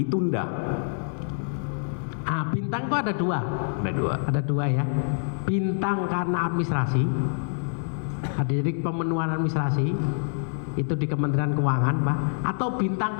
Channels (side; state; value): right; silent; digital silence